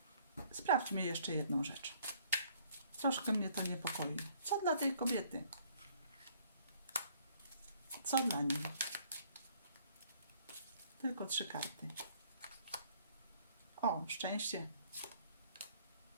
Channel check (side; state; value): both; inverted; correlation -0.60